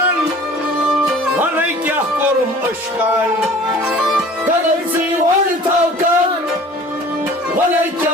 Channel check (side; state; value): both; normal; correlation 0.46